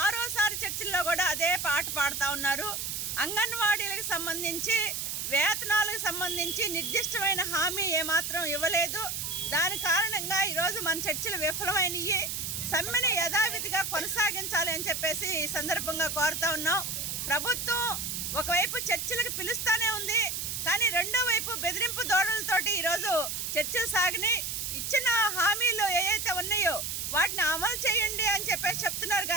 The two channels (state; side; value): noise; right; hiss, 3 dB below the sound